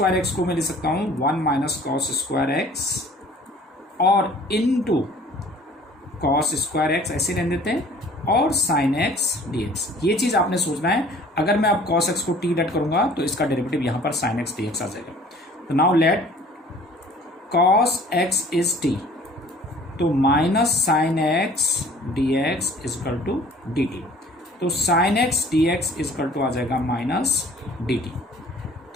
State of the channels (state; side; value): normal; both; correlation 0.51